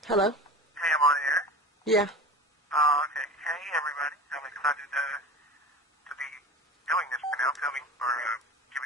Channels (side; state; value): both; normal; correlation 0.33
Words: Hello? Hey, I'm on air. Yeah. Oh, okay. Hey, everybody. I'm excited to be doing this right now, filming or